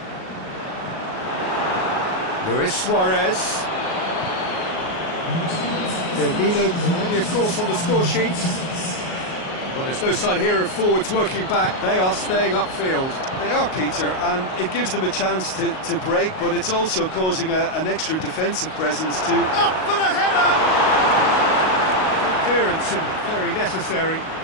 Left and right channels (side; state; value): right; late; 38 ms